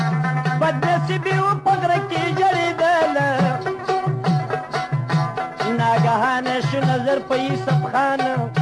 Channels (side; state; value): both; identical; correlation 1.00